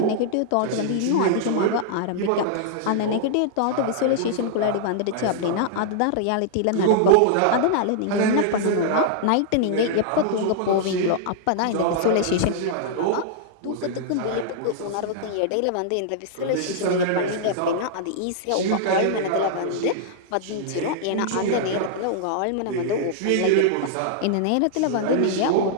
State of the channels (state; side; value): different; both; correlation -0.01